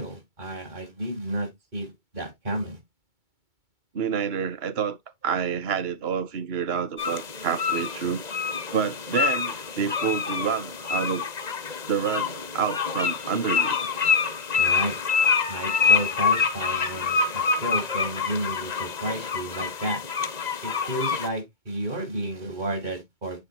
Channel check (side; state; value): left; late; 2.2 ms